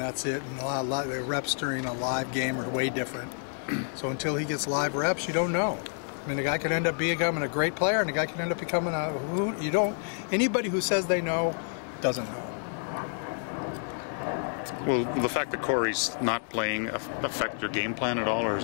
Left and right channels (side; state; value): right; silent; 59 dB below the other